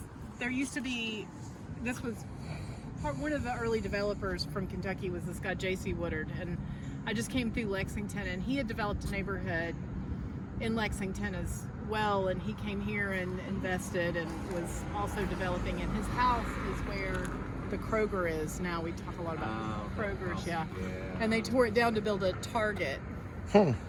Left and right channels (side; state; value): both; identical; correlation 1.00